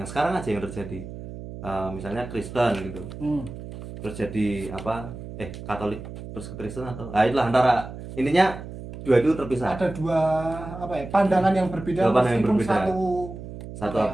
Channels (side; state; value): right; noise; hum, 11 dB below the sound